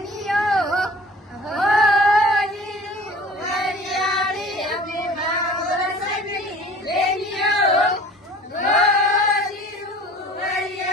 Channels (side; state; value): both; normal; correlation 0.46